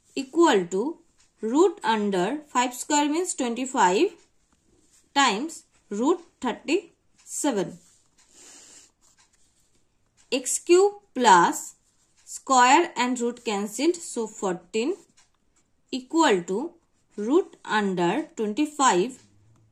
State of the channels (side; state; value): both; identical; correlation 1.00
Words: equal to root under 5 square means 25 times root 37. X cube plus square and root cancelled, so 14 equal to root under 25